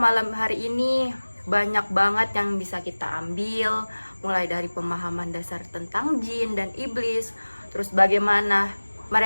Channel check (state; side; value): inverted; both; correlation -1.00